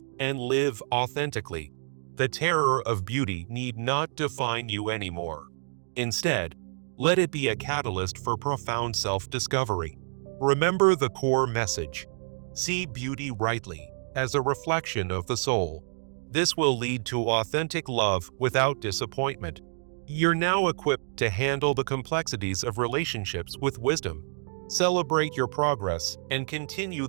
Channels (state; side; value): silent; left; digital silence